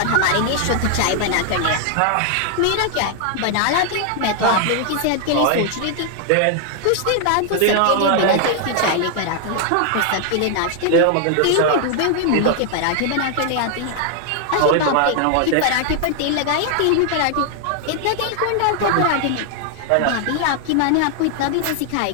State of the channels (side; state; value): both; different; correlation 0.00